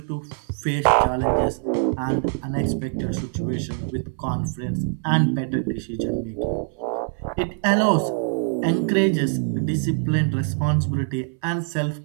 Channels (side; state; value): left; silent; 60 dB below the other